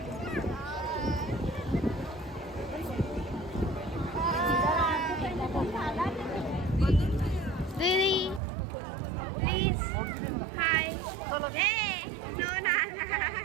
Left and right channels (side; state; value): left; drops out; at 8.4 s